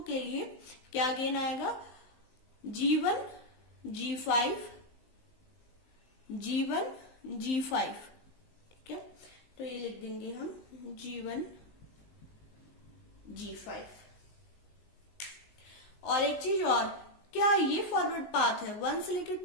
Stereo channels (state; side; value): late; right; 19 ms